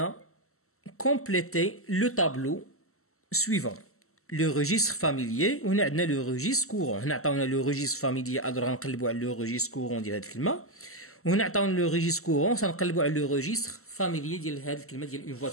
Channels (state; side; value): late; right; 0.63 ms